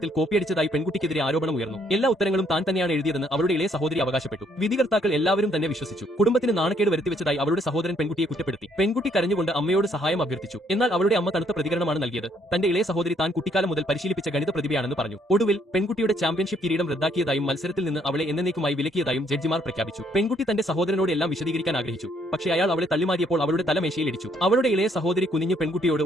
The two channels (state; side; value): normal; both; correlation 0.68